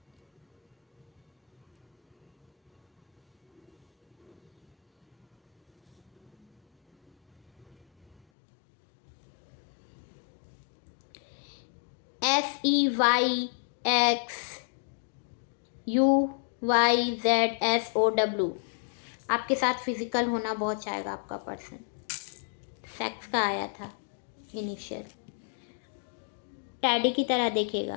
SEYXUYZSOW। आपके साथ फिजिकल होना बहुत चाहेगा आपका पर्सन। सेक्स का आया था इनिशियल। टैडी की तरह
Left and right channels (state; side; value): drops out; right; at 8.2 s